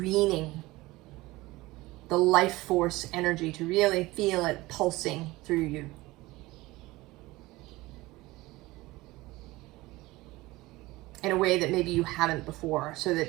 the life force energy, to really feel it pulsing through you. In a way that maybe you haven't before, so that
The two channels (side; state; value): left; quieter; 19.9 dB